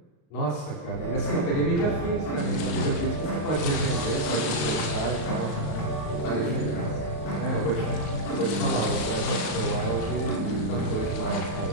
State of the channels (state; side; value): late; right; 35 ms